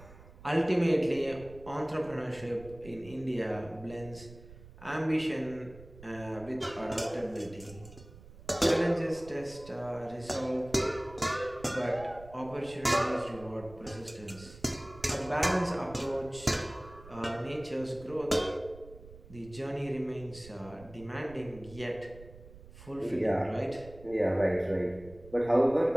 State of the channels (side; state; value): right; noise; rumble, 18 dB below the sound